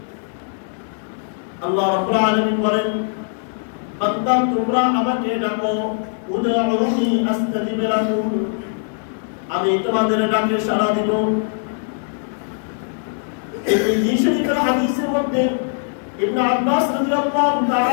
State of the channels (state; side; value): silent; right; 65 dB below the other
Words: আল্লাহ রাব্বুল আলামিন বলেন, বান্দা তোমরা আমাকে ডাকো, উদউনি আস্তাজিব লাকুম, আমি তোমাদের ডাকে সাড়া দিব। এই শরীফের হাদিসের মধ্যে ইবনে আব্বাস রাদিয়াল্লাহু